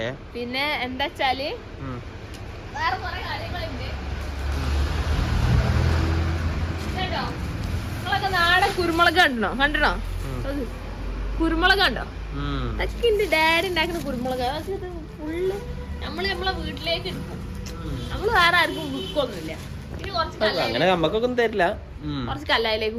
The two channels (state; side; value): identical; both; correlation 1.00